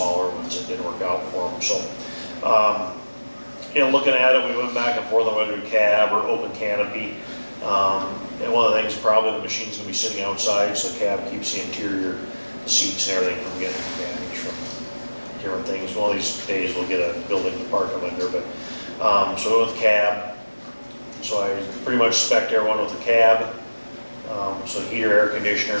ones that didn't work out for them. So, looking at it, we went back and forth on whether to cab or open canopy. And one of the things, probably the machine's gonna be sitting outside, so the cab keeps the interior, the seats and everything from getting damaged from different things. One of these days we'll get a building to park them under, but, so we went with cab. So I pretty much spec'd everyone with a cab. So heater, air conditioner,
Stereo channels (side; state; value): both; inverted; correlation -1.00